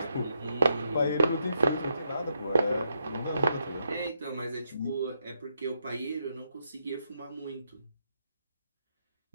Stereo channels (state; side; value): inverted; both; correlation -0.80